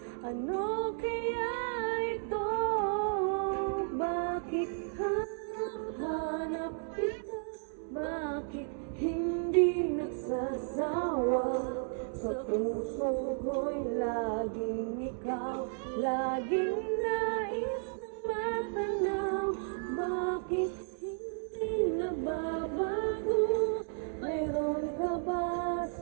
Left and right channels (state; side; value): silent; left; 56 dB below the other